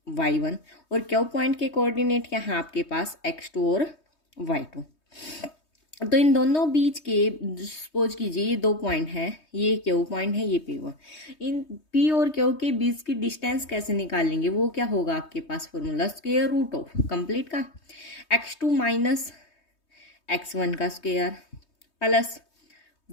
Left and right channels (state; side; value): late; right; 3.2 ms